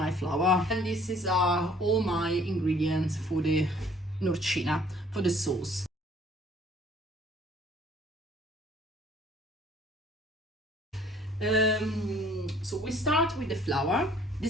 flour. And this is all my ingredients for the Norcina, for the sauce. So we start with the flour.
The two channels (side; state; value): both; normal; correlation 0.57